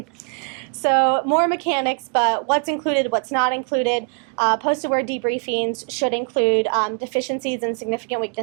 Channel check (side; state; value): left; quieter; 39.1 dB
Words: So more mechanics, but what's included, what's not included. Post-award debriefings should include deficiencies and significant